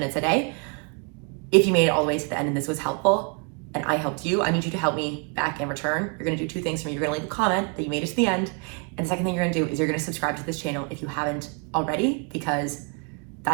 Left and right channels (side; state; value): left; quieter; 35.3 dB